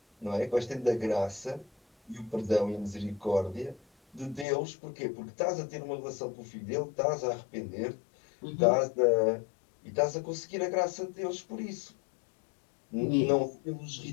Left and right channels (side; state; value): right; drops out; at 4.5 s